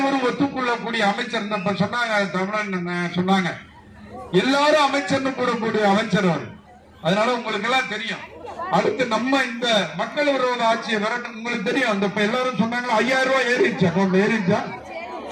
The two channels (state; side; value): identical; both; correlation 1.00